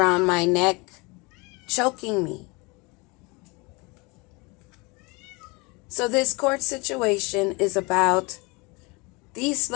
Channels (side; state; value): right; quieter; 27.1 dB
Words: my neck, choking me. So this court situation is about these